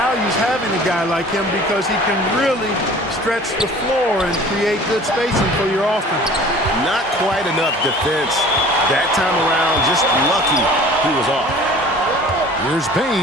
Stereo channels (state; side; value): normal; both; correlation 0.46